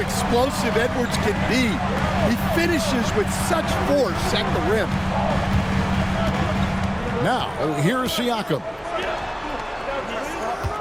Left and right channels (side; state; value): both; identical; correlation 1.00